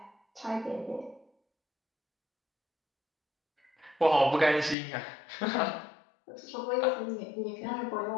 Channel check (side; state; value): right; drops out; at 4.8 s